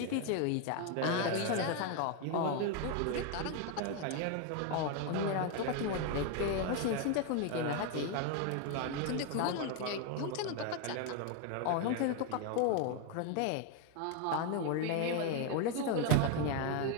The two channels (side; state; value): both; different; correlation 0.01